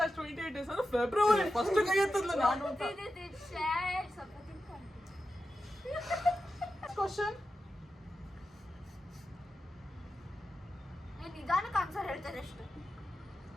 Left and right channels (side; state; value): both; normal; correlation 0.91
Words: has 28 days ಅಂದ್ರೆ ಫೆಬ್ರವರಿ. ಫಸ್ಟ್ ಕೈ ಎತ್ತದ್ಲ ನಾನು ಅಂತ. ಕ್ವಶನ್. ನಿಧಾನಕ್ಕೆ ಆನ್ಸರ್ ಹೇಳ್ತಾರೆ ಅಷ್ಟು.